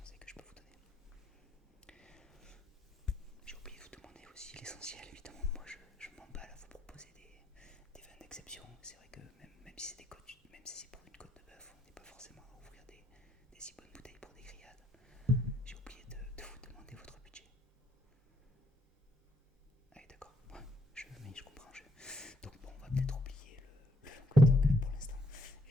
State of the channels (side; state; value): both; normal; correlation 0.72